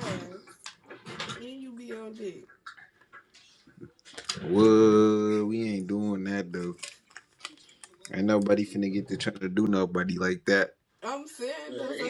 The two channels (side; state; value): both; identical; correlation 1.00